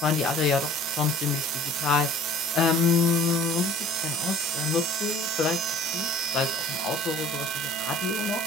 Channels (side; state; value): both; normal; correlation 0.50